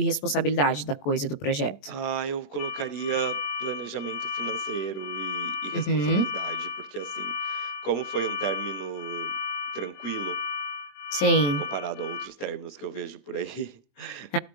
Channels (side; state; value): right; late; 21 ms